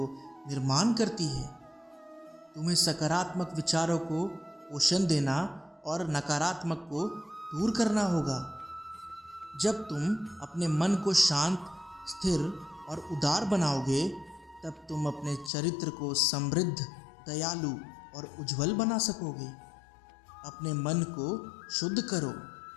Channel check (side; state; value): right; drops out; at 15.5 s